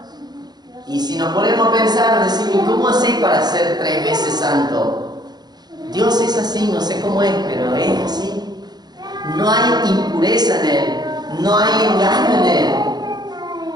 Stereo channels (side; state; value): left; late; 0.20 ms